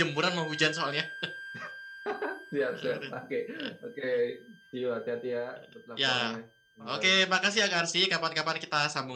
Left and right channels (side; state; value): both; identical; correlation 1.00